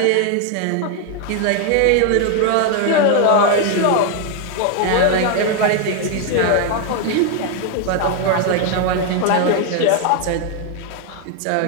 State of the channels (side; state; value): both; different; correlation 0.01